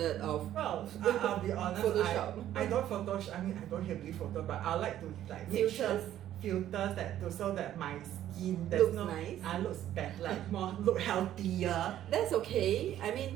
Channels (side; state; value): left; quieter; 12.0 dB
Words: of. Well, I'll be honest. Photoshop. I don't Photoshop. I mean, I don't heavily photo, but I like to like filters that so that my skin looks nice. Looks better, like look healthier. That's okay. I